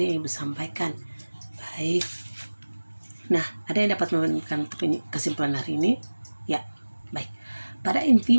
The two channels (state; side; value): inverted; both; correlation -1.00